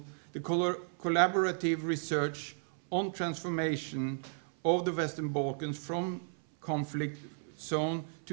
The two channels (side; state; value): left; silent; 55 dB below the other